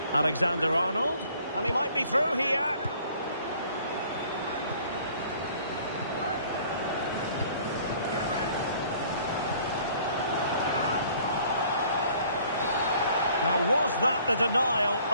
Alexander-Arnold. And he might be through here. Now, was that the denial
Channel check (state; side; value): inverted; both; correlation -0.56